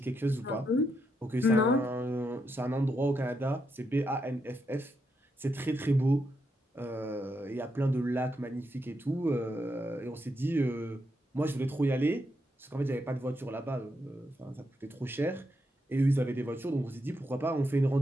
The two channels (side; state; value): both; normal; correlation 0.81